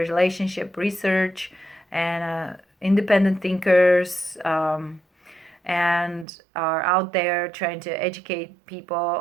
research and independent thinkers, and are out there trying to educate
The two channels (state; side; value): drops out; left; at 6.2 s